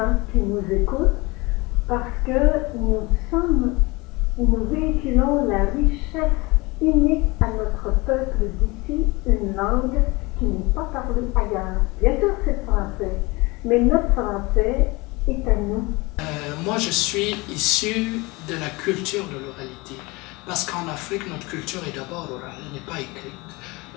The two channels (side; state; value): right; quieter; 24.3 dB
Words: qui nous écoutent, parce que nous véhiculons la richesse unique à notre peuple d'ici, une langue qui n'est pas parlée ailleurs. Bien sûr, c'est le français, mais notre français est à nous. Moi, je suis issu de la culture de l'oralité, parce qu'en Afrique, notre culture est d'abord orale, elle n'est pas écrite.